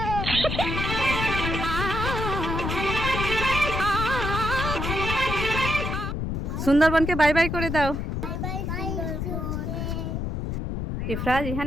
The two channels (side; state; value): left; noise; rumble, 2 dB below the sound